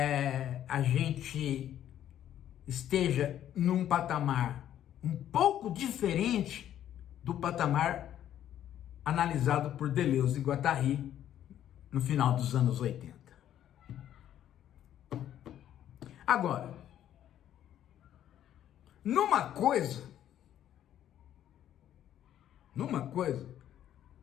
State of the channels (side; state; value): right; quieter; 11.1 dB